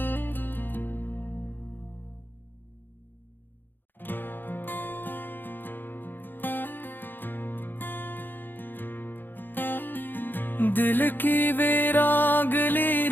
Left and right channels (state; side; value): late; right; 0.094 ms